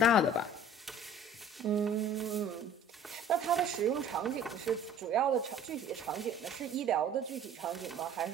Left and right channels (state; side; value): normal; both; correlation 0.49